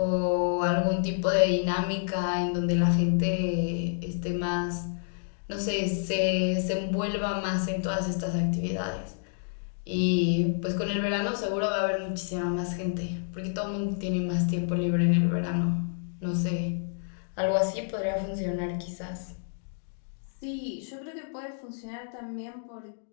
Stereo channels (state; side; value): silent; right; digital silence